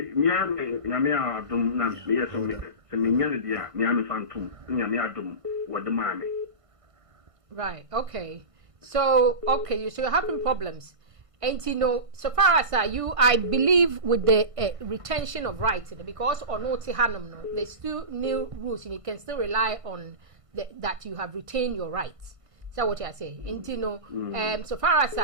Yamia Dum, yes, Seminiania, Miami Phantom, Yamia Dum, what the mammy. Right, okay. So, okay, so you're having problems. And you know, so far as you, I believe with the retention of rights, because on Hanum, there's still new rules, and you can still rely on that you have retained your rights. So what I say, and you know, so far as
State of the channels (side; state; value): left; late; 1.5 ms